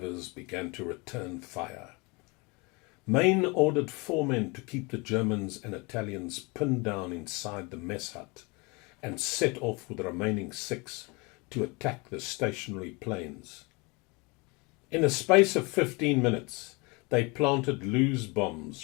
began to return fire. Mayne ordered 4 men to keep the Germans and Italians pinned down inside the mess hut and set off with the remaining 6 to attack the stationary planes. In a space of 15 minutes, they planted loose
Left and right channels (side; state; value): right; quieter; 28.0 dB